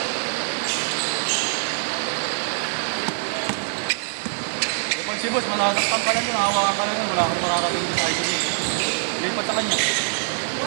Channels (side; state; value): left; silent; digital silence